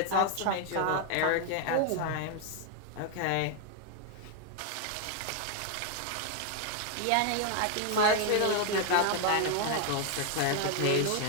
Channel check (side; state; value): both; different; correlation 0.00